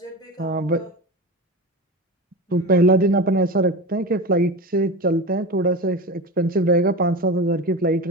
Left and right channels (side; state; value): both; normal; correlation 0.26